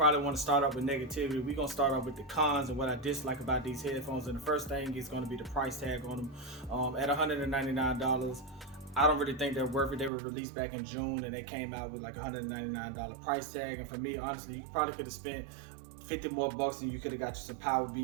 want to start off with negativity, we're going to start off with the cons and what I dislike about these headphones. And the first thing is going to be the price tag on them. At $199, I don't really think they're worth it. They were released back in June and they came out with like $199 price tag. And for me, honestly, you probably could have spent 50 more bucks and you could have got you some Power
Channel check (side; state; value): left; drops out; at 10.1 s